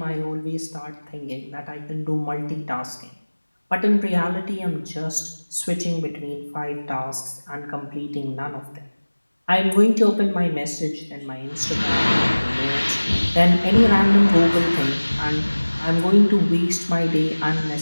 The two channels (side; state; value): both; inverted; correlation -1.00